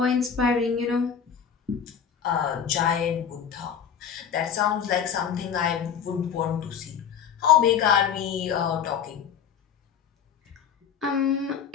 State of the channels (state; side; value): quieter; right; 7.7 dB